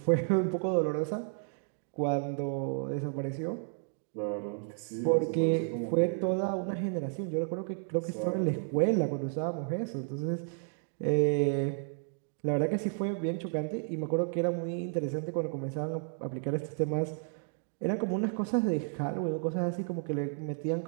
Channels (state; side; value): silent; left; 56 dB below the other